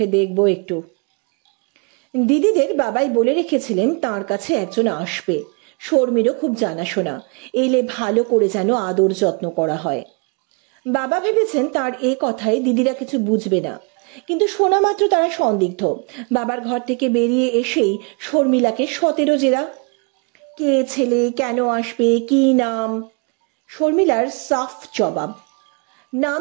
দেখবো একটু। দিদিদের বাবাই বলে রেখেছিলেন তার কাছে একজন আসবে। শর্মিরও খুব জানাশোনা, এলে ভালো করে যেন আদর যত্ন করা হয়। বাবা ভেবেছেন তার এ কথায় দিদিরা কিছু বুঝবে না, কিন্তু শোনা মাত্র তারা সন্দিগ্ধ। বাবার ঘর থেকে বেরিয়ে এসেই শর্মিলাকে 17 জেরা। কে ছেলে, কেন আসবে, কি নাম? শর্মিলার সাফ জবাব, নাম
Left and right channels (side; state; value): left; quieter; 33.9 dB